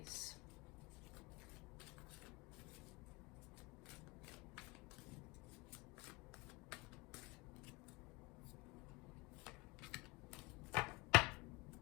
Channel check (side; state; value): right; quieter; 23.7 dB